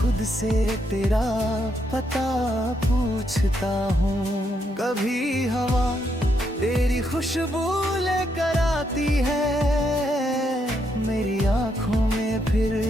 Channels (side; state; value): both; normal; correlation 0.77